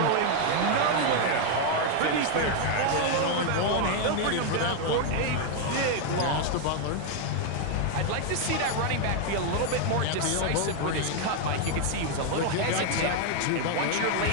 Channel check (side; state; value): both; different; correlation 0.01